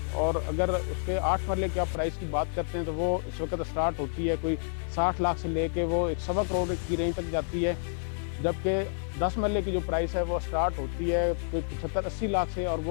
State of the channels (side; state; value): right; silent; digital silence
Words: और अगर उसके 8 मरले की आप प्राइस की बात करते हैं तो वो इस वक्त स्टार्ट होती है कोई 60 लाख से लेके वो 1.25 करोड़ की रेंज तक जाती है, जबकि 10 मरले की जो प्राइस है वो स्टार्ट होती है कोई 75-80 लाख से और